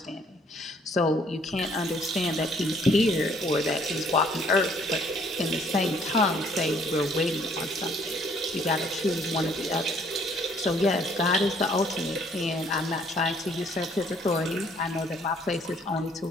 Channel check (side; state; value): both; normal; correlation 0.62